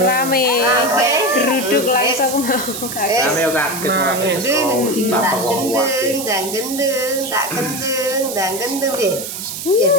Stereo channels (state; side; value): noise; right; hiss, 7 dB below the sound